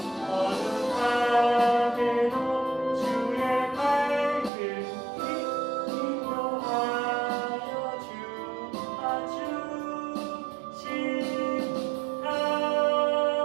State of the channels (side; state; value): left; drops out; at 4.5 s